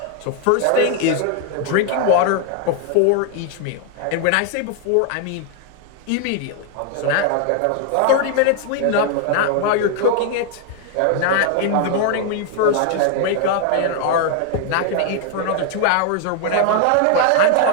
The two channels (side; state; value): both; different; correlation 0.00